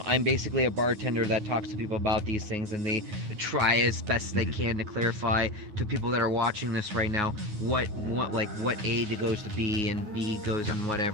basically a bartender that talks to people about these things, and they try as best they Mhm. can to clarify to people that are watching this right now what what A goes to B and B goes in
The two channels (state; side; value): late; left; 9.4 ms